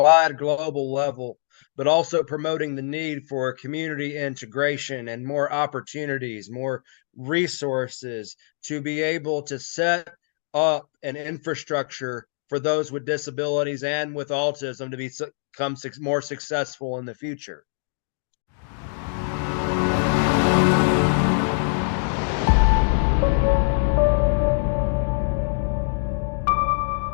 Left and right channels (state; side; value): silent; right; digital silence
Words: global level, but also promoting the need for community integration and more opportunities, more resources to be able to set up an infrastructure for those with disabilities and with autism to become more successful in the future.